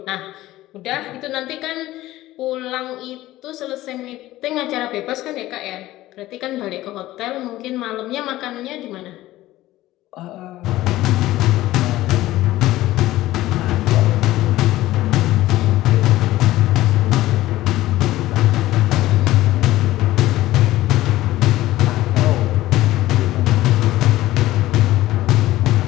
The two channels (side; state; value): right; quieter; 16.1 dB